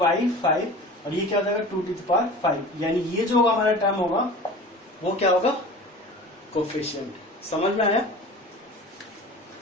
और ये क्या हो जाएगा 2 टू द पावर 5। यानी ये जो होगा हमारा टर्म होगा वो क्या होगा, कोफिशिएंट। समझ में आया?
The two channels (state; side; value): normal; both; correlation 0.38